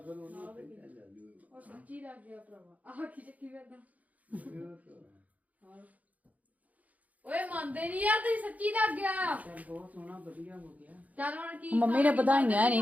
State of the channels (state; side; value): late; left; 0.074 ms